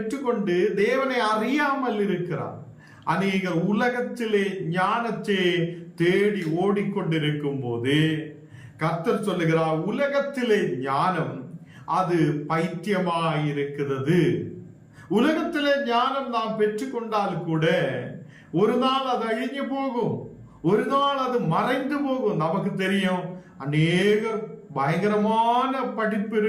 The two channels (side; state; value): both; identical; correlation 1.00